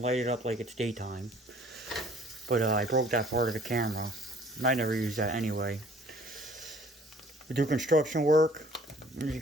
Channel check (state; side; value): normal; both; correlation 0.55